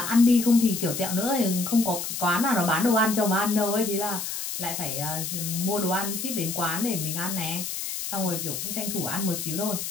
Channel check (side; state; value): left; noise; hiss, 5 dB below the sound